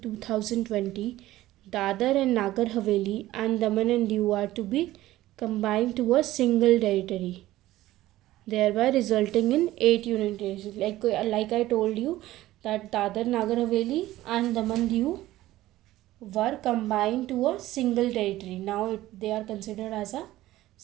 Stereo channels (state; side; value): quieter; left; 15.8 dB